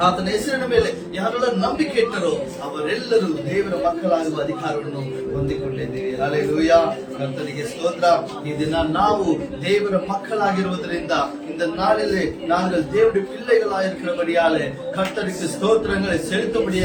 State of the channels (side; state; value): both; identical; correlation 1.00